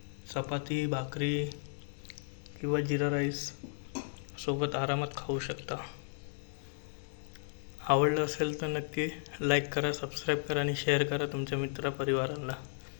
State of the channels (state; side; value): silent; right; digital silence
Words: चपाती, भाकरी किंवा जिरा राईस सोबत आरामात खाऊ शकता. आवडलं असेल तर नक्की लाईक करा, सबस्क्राईब करा आणि शेअर करा तुमच्या मित्रपरिवारांना.